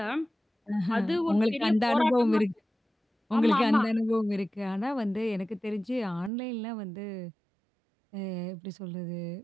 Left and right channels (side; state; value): left; drops out; at 6.3 s